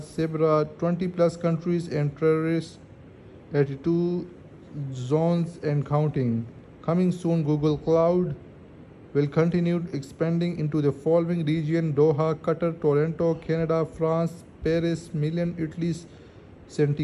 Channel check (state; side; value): identical; both; correlation 1.00